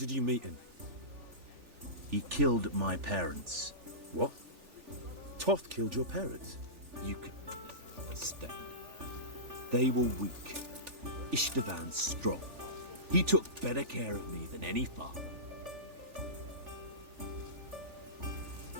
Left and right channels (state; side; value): late; left; 3.4 ms